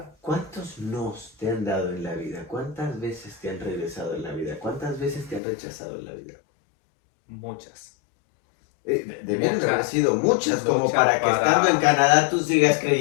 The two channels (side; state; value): right; drops out; at 5.4 s